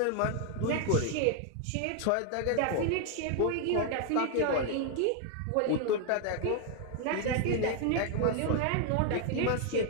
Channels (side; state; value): both; different; correlation 0.00